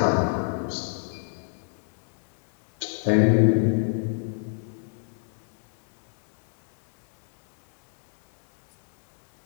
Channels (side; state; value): right; silent; 61 dB below the other